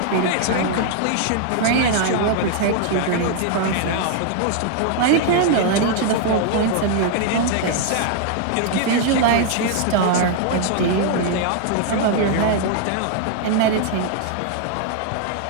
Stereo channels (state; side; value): different; both; correlation 0.00